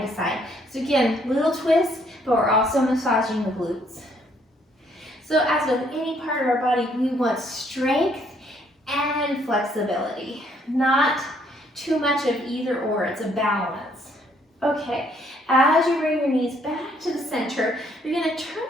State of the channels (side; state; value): both; normal; correlation 0.67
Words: to side. So again, little twist, but we're also massaging the glutes. So as with any part of our body, we want strength and flexibility, not too much of either or, it's a balance. Okay, as you bring your knees back to the center, you're gonna turn